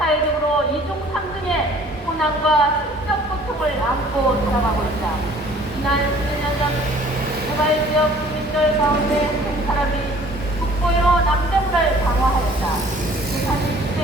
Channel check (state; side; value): normal; both; correlation 0.53